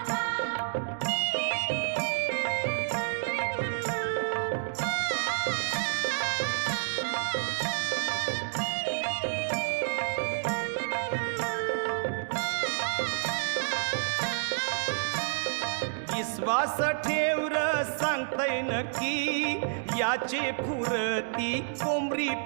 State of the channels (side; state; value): left; silent; digital silence